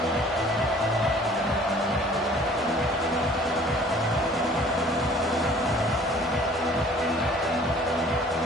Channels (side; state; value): both; normal; correlation 0.52